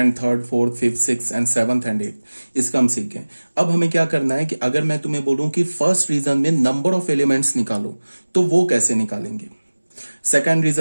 third, fourth, fifth, six and seventh and eight, इसका हम सीख गए। अब हमें क्या करना है कि अगर मैं तुम्हें बोलूं कि फर्स्ट रीजन में नंबर ऑफ एलिमेंट्स निकालो, तो वो कैसे निकालेंगे। सेकंड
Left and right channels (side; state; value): both; inverted; correlation -1.00